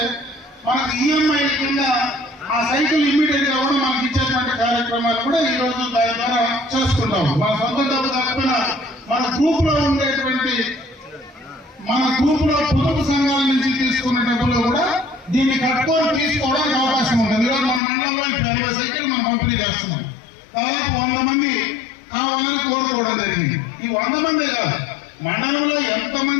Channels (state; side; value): drops out; right; at 17.8 s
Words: మనకు ఈఎంఐ కింద ఆ సైకిల్ ఇమ్మీడియట్ గా కూడా మనకి ఇచ్చేటువంటి కార్యక్రమాలు కూడా ఈ రోజు దాని ద్వారా చేసుకుంటాం. మన సొంత డబ్బు కాకపోయినా మన గ్రూప్ లో ఉండేటువంటి పొదుపు సంఘాల నుంచి తీసుకున్న డబ్బులు కూడా దీన్ని కట్టుకొని తీసుకోవడానికి అవకాశం ఉంటుంది. ఈరోజు మన మండలంలో 20 సైకిల్ మనం పంపిణీ చేస్తున్నాం. దాదాపు 100 మంది కావాలని కోరుకోవడం జరిగింది. ఈ 100 మంది కాదు, మండలంలో